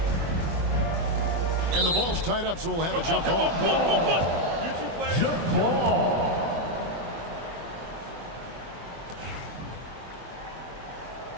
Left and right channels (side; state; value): left; late; 24 ms